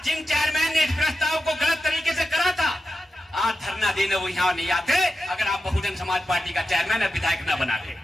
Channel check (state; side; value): normal; both; correlation 0.90